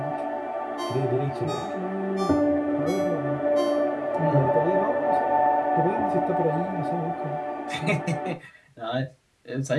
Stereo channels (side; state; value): both; identical; correlation 1.00